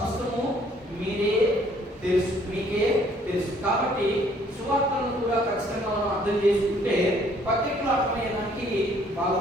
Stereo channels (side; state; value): both; normal; correlation 0.61